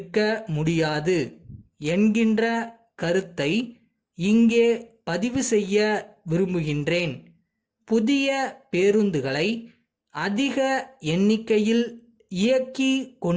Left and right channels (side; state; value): both; identical; correlation 1.00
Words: முடியாது என்கின்ற கருத்தை இங்கே பதிவு செய்ய விரும்புகின்றேன். புதிய பேருந்துகளை அதிக எண்ணிக்கையில் இயக்கி